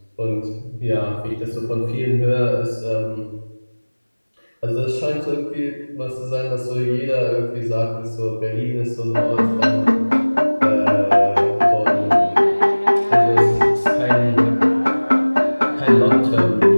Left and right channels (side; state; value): both; inverted; correlation -1.00